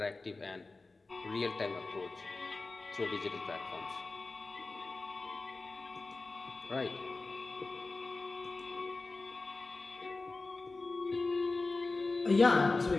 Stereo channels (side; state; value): right; quieter; 3.5 dB